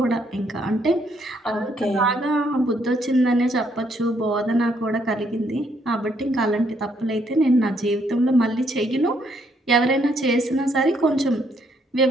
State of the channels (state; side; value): normal; both; correlation 0.71